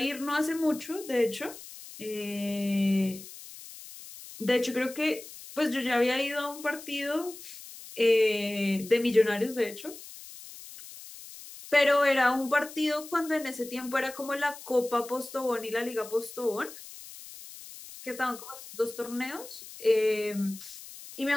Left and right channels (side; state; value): left; noise; hiss, 15 dB below the sound